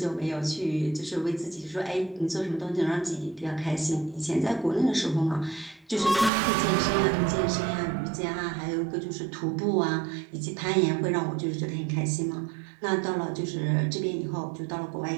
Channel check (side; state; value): left; drops out; at 6.3 s